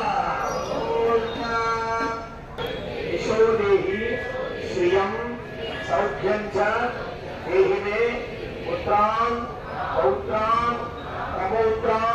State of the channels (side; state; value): both; identical; correlation 1.00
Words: సౌఖ్యం చ దేహి మే పుత్రాన్ పౌత్రాన్